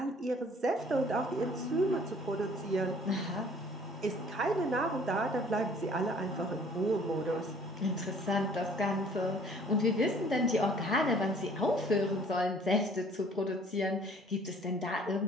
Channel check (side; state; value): both; normal; correlation 0.55